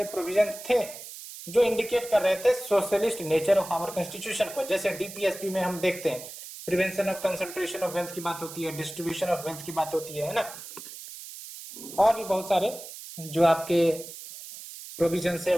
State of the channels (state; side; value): noise; right; hiss, 13 dB below the sound